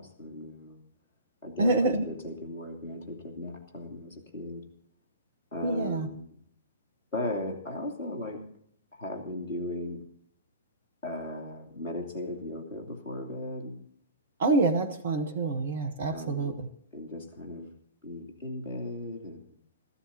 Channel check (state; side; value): inverted; both; correlation -0.33